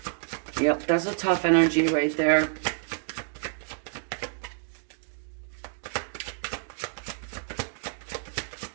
Yep, that's a tough energy right there.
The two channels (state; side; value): silent; left; 59 dB below the other